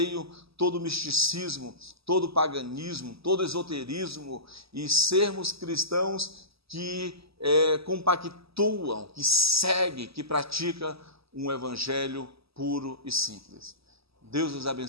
todo misticismo, todo paganismo, todo esoterismo e sermos cristãos que compactuam, que seguem, que praticam um evangelho puro e simples. Deus os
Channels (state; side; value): late; left; 0.77 ms